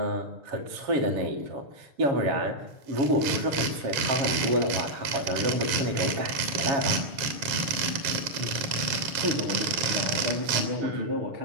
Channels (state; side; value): late; left; 7.4 ms